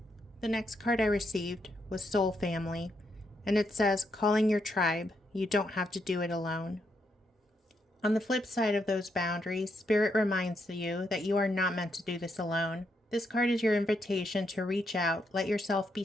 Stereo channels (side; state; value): both; normal; correlation 0.79